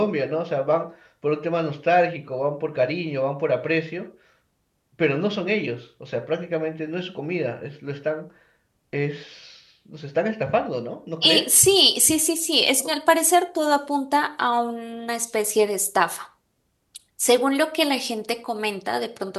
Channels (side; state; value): both; identical; correlation 1.00